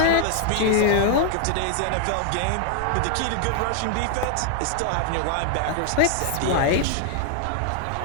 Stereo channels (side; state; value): both; different; correlation 0.00